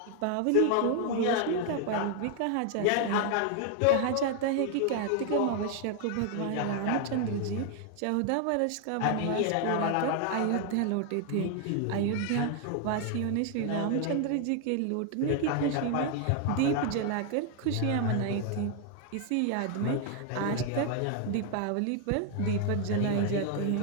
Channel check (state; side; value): different; both; correlation 0.00